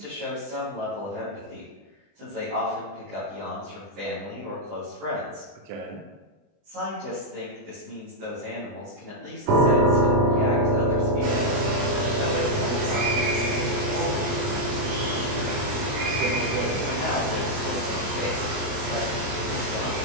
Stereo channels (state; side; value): late; left; 20 ms